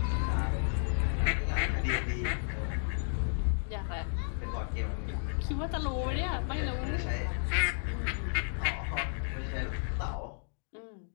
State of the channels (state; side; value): silent; right; digital silence